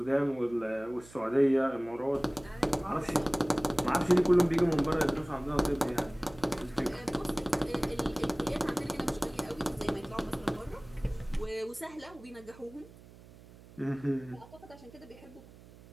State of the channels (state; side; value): noise; right; hum, 21 dB below the sound